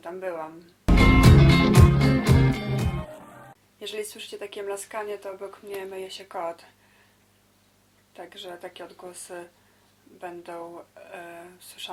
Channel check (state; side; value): identical; both; correlation 1.00